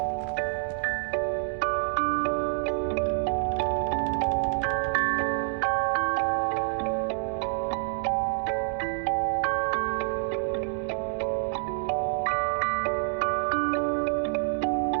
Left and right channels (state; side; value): silent; left; digital silence